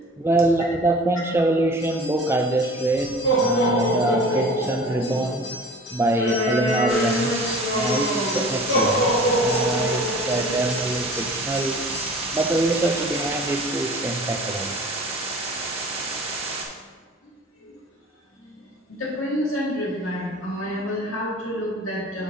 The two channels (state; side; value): normal; both; correlation 0.43